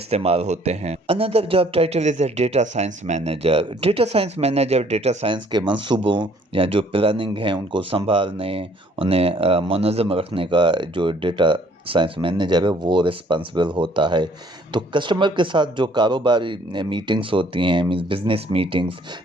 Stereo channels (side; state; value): both; normal; correlation 0.60